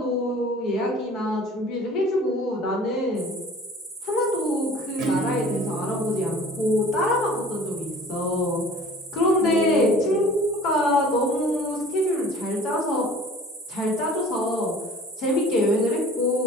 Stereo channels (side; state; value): both; normal; correlation 0.47